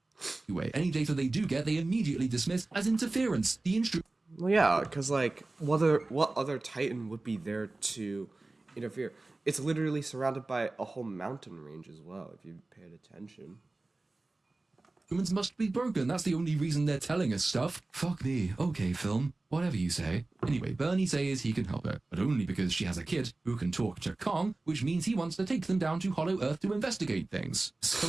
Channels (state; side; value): quieter; left; 3.1 dB